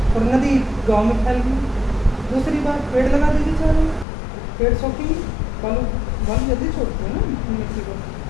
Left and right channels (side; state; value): right; drops out; at 4.0 s